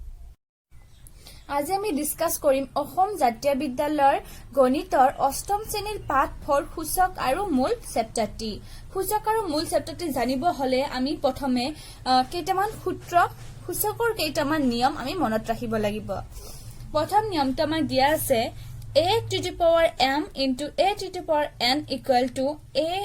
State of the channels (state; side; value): identical; both; correlation 1.00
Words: আজি আমি discuss কৰিম অসম জাতীয় বিদ্যালয়ৰ গণিতৰ অষ্টম শ্ৰেণীৰ পাঠ 4 সূচক আৰু মূল চেপ্টাৰটি। সূচক আৰু মূল চেপ্টাৰটি জানিব হলে আমি প্ৰথমে কেইটামান সূত্ৰ সূচকৰ কেইটামান নিয়ম আমি মনত ৰাখিব লাগিব। প্ৰথম নিয়মটো আমাৰ দিয়া আছে a to the power m into a to the power n equal to